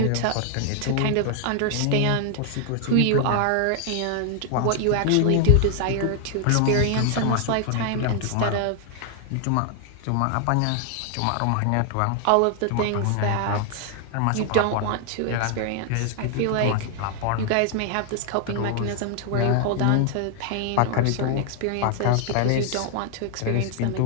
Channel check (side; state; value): both; different; correlation 0.00